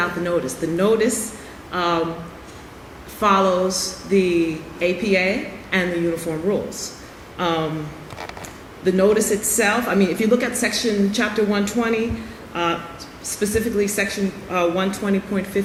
the notice. The notice follows the APA and the uniform rules. The notice itself, I mean, if you look at chapter 120, specifically section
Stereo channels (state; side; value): identical; both; correlation 1.00